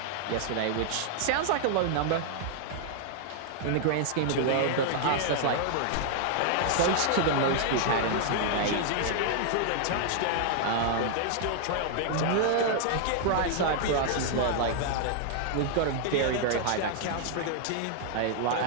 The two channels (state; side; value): different; both; correlation -0.01